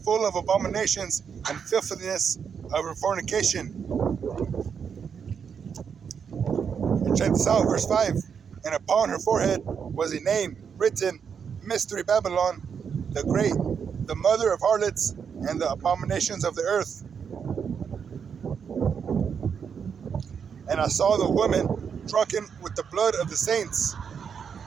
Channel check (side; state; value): left; quieter; 6.9 dB